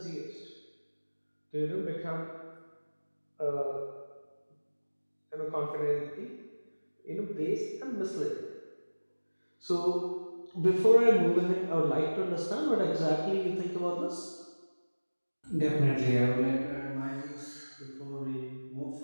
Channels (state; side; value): inverted; both; correlation -1.00